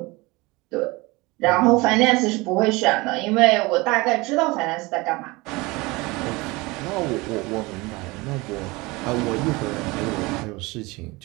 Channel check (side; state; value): left; quieter; 23.4 dB